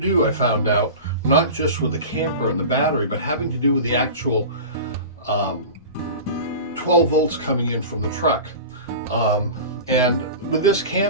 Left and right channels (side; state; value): both; inverted; correlation -0.33